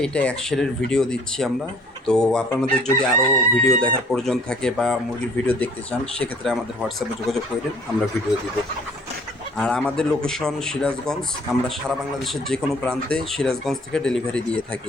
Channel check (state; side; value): normal; both; correlation 0.55